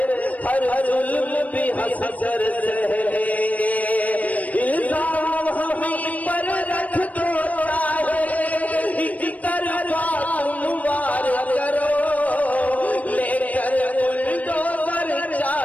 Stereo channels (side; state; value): right; late; 0.071 ms